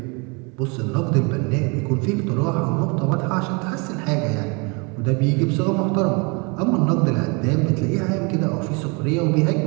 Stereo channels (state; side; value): quieter; left; 30.8 dB